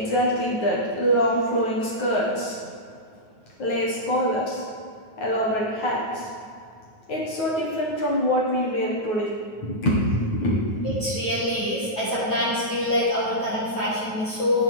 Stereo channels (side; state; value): right; late; 9.4 ms